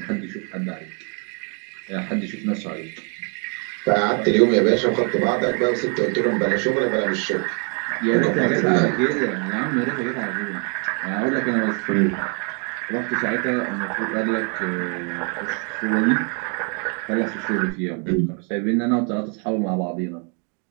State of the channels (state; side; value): quieter; left; 38.9 dB